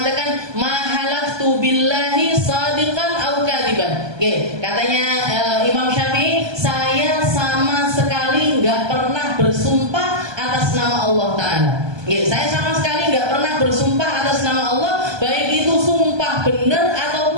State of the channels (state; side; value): late; left; 1.2 ms